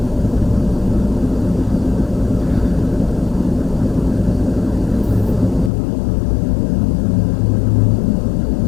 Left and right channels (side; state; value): right; drops out; at 5.7 s